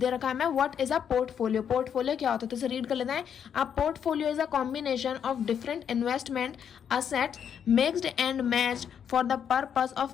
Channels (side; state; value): right; quieter; 8.1 dB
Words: रखा है हमें what is a portfolio. Portfolio क्या होता है तो इसे रीड कर लेते हैं। A portfolio is a combination of different investment assets mixed and matched for the purpose